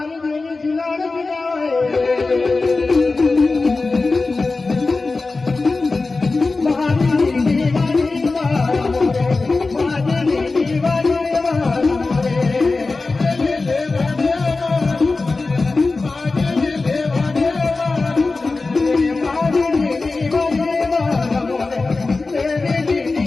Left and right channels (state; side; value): quieter; right; 3.7 dB